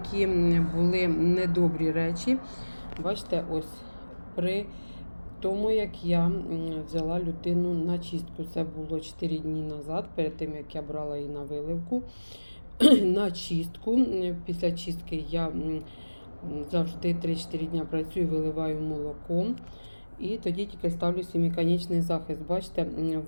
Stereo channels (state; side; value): inverted; both; correlation -1.00